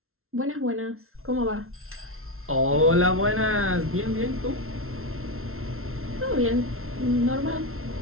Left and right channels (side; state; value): left; late; 0.62 ms